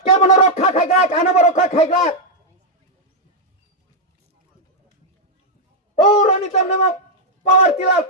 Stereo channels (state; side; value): normal; both; correlation -0.03